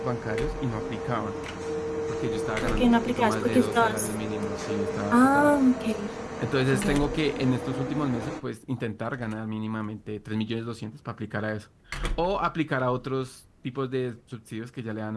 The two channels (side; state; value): both; identical; correlation 1.00